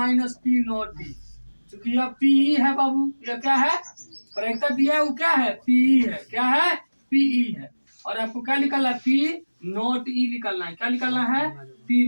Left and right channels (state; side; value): inverted; both; correlation -1.00